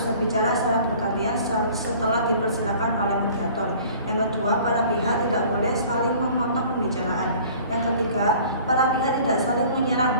berbicara secara bergantian setelah dipersilakan oleh mediator. Yang kedua, para pihak tidak boleh saling memotong pembicaraan. Yang ketiga, para pihak tidak saling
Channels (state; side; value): inverted; both; correlation -0.49